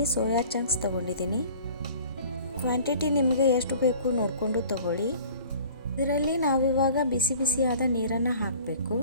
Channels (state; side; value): inverted; both; correlation -0.47